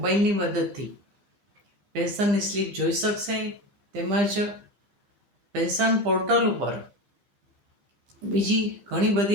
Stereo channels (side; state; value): left; late; 15 ms